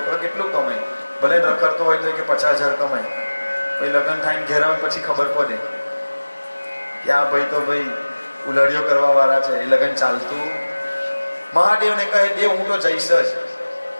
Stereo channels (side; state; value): both; inverted; correlation -1.00